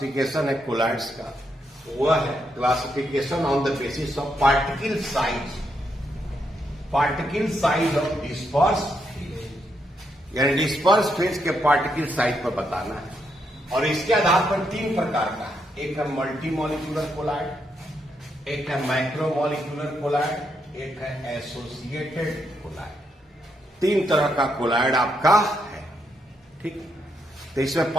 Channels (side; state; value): both; normal; correlation 0.79